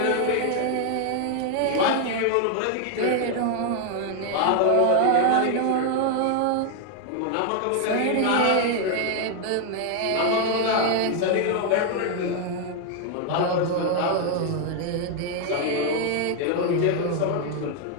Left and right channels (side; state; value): both; different; correlation 0.00